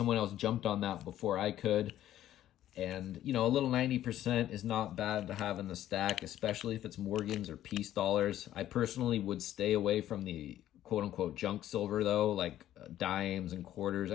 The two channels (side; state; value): right; quieter; 12.5 dB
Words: else jumped on that before I could. And, you know, a little 90% is not bad to have in the stack, especially if it's Morgans or peace dollars. I personally would stay away from the quote-unquote junk silver, though, like dimes and quarters.